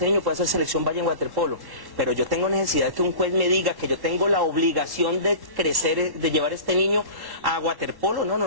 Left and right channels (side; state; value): left; late; 1.1 ms